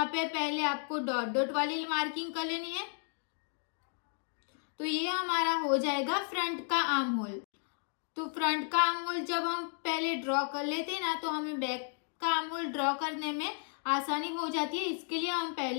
पे पहले आपको डॉट डॉट वाली मार्किंग कर लेनी है। तो ये हमारा हो जाएगा फ्रंट का आर्म होल। तो फ्रंट का आर्म होल जब हम पहले ड्रॉ कर लेते हैं ना, तो हमें बैक का आर्म होल ड्रॉ करने में आसानी हो जाती है। इसके लिए हम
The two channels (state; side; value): silent; right; 55 dB below the other